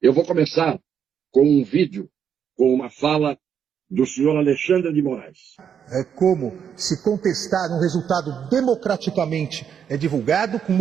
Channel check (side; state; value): left; quieter; 8.0 dB